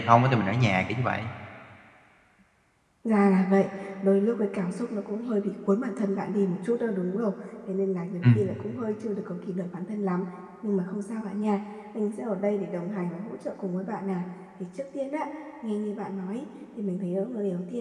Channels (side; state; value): both; identical; correlation 1.00